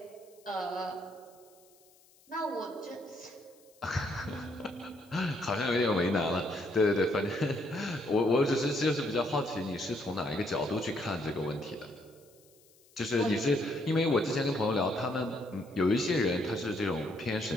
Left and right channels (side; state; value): left; noise; hiss, 29 dB below the sound